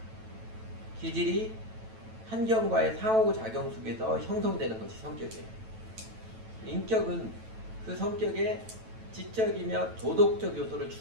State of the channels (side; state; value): left; late; 9.1 ms